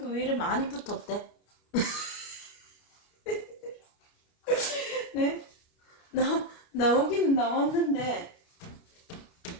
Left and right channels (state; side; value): late; right; 29 ms